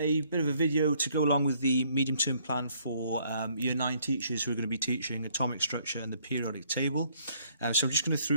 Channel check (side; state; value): both; inverted; correlation -0.65